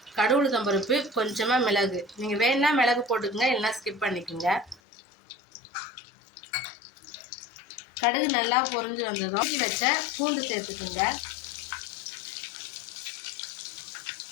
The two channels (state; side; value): drops out; right; at 4.8 s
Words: கடுகு உளுத்தம் பருப்பு, கொஞ்சமாக மிளகு, நீங்கள் வேணுன்னா மிளகு போட்டுக்கோங்க, இல்லைன்னா ஸ்கிப் பண்ணிக்கோங்க. கடுகு நல்லா பொரிஞ்சு வந்ததும் வச்ச பூண்டு சேர்த்துக்குங்க.